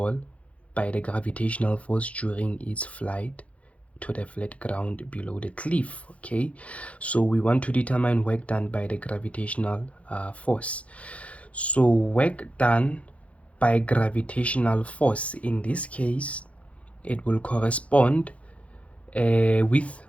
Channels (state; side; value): late; right; 0.064 ms